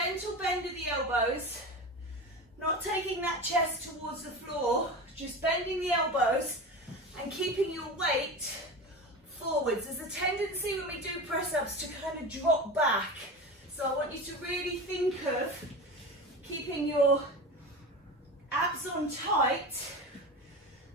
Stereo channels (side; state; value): both; normal; correlation 0.28